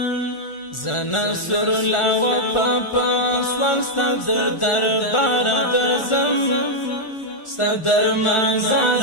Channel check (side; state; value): right; late; 1.4 ms